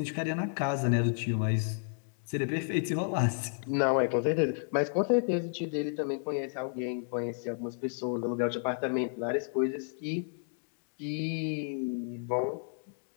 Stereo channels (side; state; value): right; silent; digital silence